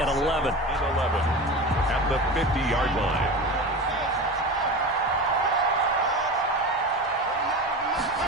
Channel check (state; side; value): normal; both; correlation 0.28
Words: 11. At the 50-yard line.